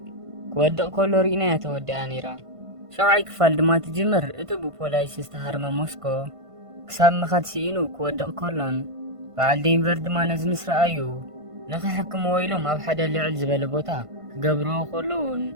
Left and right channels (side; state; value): left; late; 1.5 ms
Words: كودق كولو رينا يتودي انيرا شوعي كفال دما تجمر اتبو بولايس استهارما موسكو كساب مخاد سينو كودق كولون بعد دينفر دما نزمس رأيو نخي حكم ويلوم اب حدا اللي عل زبالة بوتا قبرو خلون